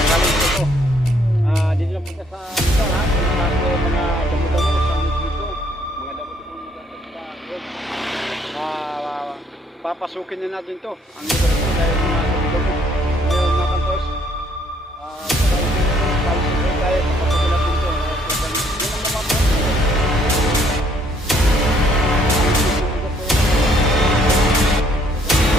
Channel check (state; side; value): normal; both; correlation 0.66